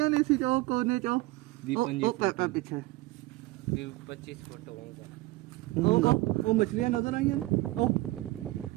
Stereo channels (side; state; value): left; quieter; 19.2 dB